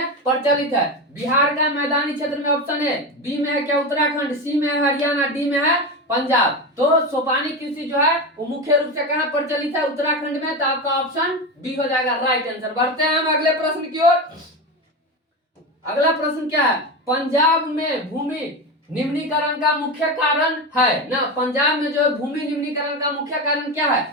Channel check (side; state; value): both; normal; correlation 0.19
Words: प्रचलित है? बिहार का मैदानी क्षेत्र में ऑप्शन है, बी में है क्या उत्तराखंड, सी में है हरियाणा, डी में है पंजाब। तो सोपानी कृषि जो है वो मुख्य रूप से कहाँ प्रचलित है? उत्तराखंड में। तो आपका ऑप्शन बी हो जाएगा राइट आंसर। बढ़ते हैं हम अगले प्रश्न की ओर। अगला प्रश्न क्या है, पंजाब में भूमि निम्नीकरण का मुख्य कारण है ना? पंजाब में जो है भूमि निम्नीकरण का मुख्य कारण क्या